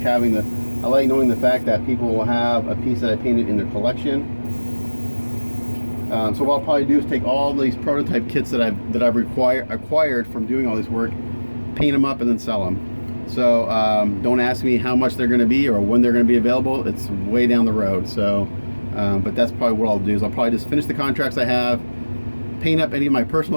the fact that people will have a piece that I painted in their collection. So what I'll probably do is take all these prototype kits that I've acquired from doing all this work, paint them up, and then sell them. So don't ask me how much they're going to be or when they're going to be available. It's way down the road. So, but that's probably what I'll do, is I'll probably just finish the contracts I have, paint up any of my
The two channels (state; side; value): inverted; both; correlation -1.00